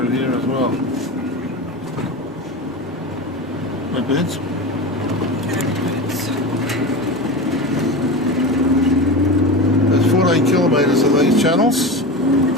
here as well. No birds? There's 14 kilometres of these channels.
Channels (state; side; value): normal; both; correlation 0.26